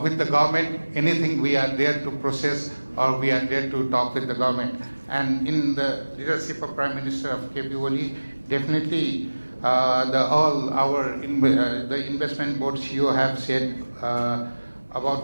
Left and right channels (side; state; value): both; inverted; correlation -1.00